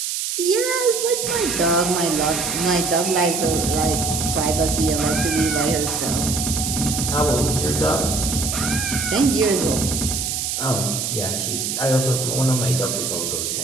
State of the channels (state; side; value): noise; right; hiss, 2 dB below the sound